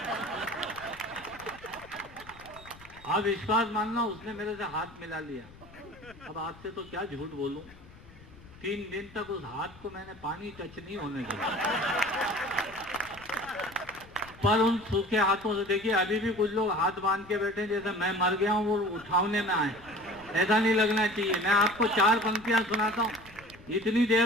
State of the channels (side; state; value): left; noise; rumble, 21 dB below the sound